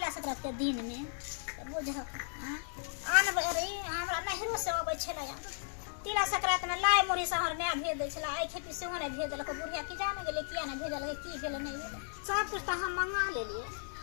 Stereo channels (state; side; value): silent; right; digital silence